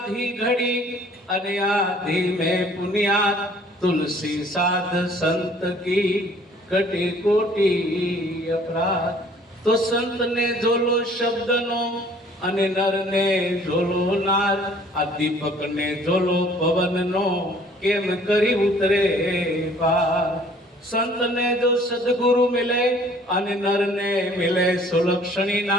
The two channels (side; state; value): both; normal; correlation 0.56